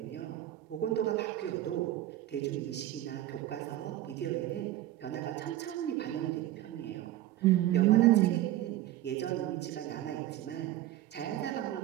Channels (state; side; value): quieter; left; 14.3 dB